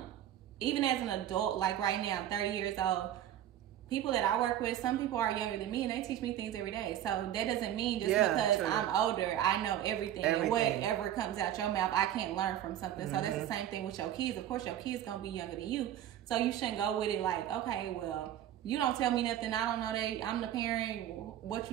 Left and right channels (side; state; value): left; quieter; 11.6 dB